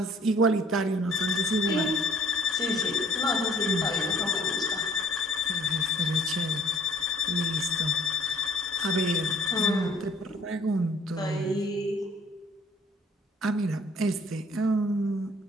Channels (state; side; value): normal; both; correlation 0.58